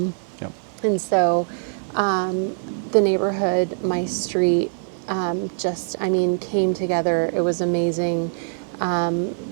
Yep. And so the neighborhood, my street, came together. It was amazing.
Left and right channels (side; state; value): left; silent; digital silence